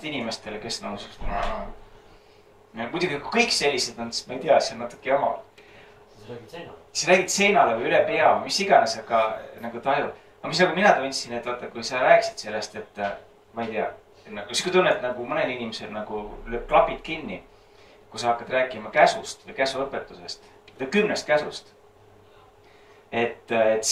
inimestele, kes nagu muidugi kui kõik sellised on, siis ma ei tea, see on natuke jama. siis räägid seinale või üle pea või mis iganes, aga nagu tajud. aga mis nagu mina tundsin, et vaata, kui sa rääkisid sellest, et ma ei tea, nagu sihuke tunne, et nagu mõnel inimesel nagu lööb klapid kinni, kui sa hakkad rääkima käsust või käsuõpetusest, 10 käsust. et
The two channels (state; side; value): identical; both; correlation 1.00